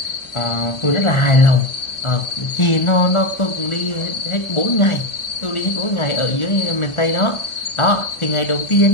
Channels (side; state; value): right; late; 1.4 ms